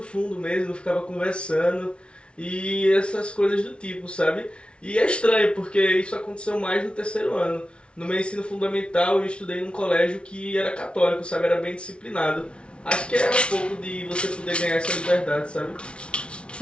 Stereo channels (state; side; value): late; right; 0.059 ms